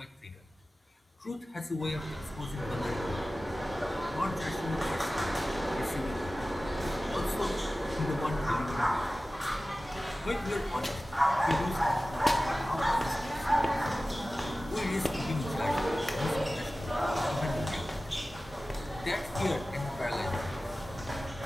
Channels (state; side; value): normal; both; correlation 0.96